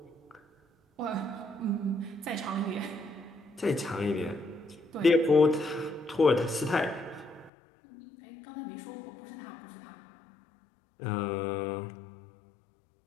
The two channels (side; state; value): right; drops out; at 7.5 s